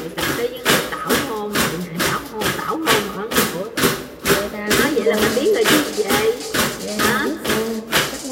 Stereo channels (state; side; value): identical; both; correlation 1.00